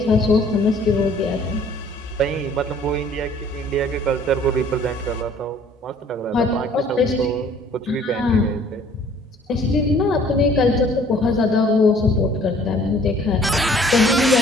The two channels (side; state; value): both; normal; correlation 0.56